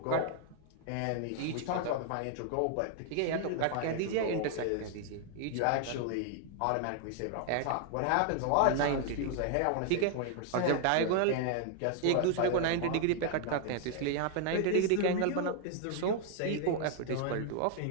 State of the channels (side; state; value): both; different; correlation 0.00